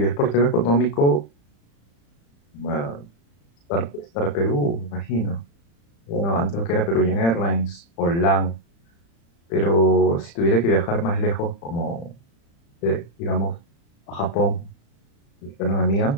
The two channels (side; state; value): right; late; 35 ms